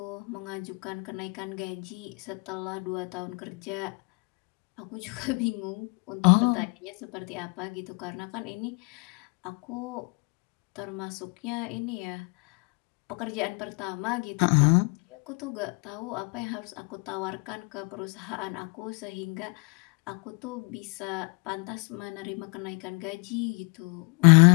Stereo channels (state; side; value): quieter; right; 34.2 dB